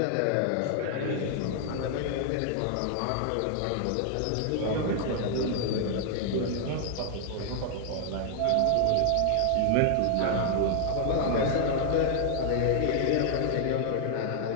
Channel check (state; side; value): different; both; correlation 0.00